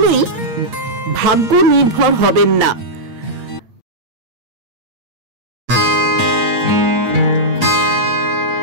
ভাগ্য নির্ভর হবেন না।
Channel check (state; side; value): late; left; 8.7 ms